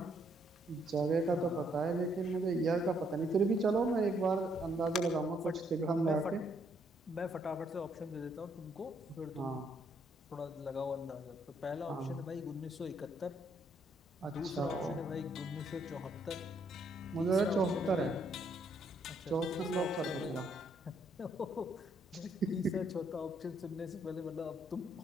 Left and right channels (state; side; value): normal; both; correlation 0.71